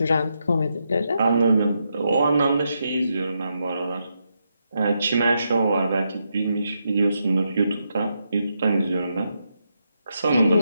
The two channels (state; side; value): inverted; both; correlation -0.83